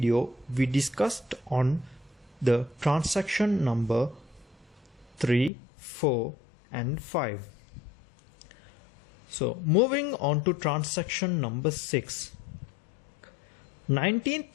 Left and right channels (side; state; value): right; drops out; at 5.5 s